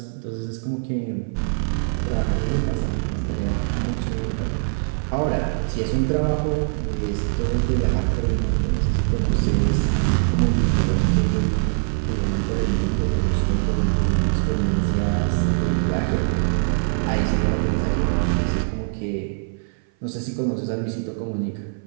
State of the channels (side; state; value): left; silent; 59 dB below the other